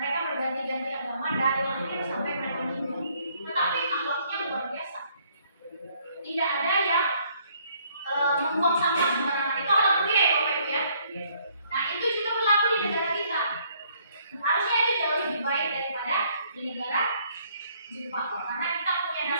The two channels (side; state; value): both; inverted; correlation -0.65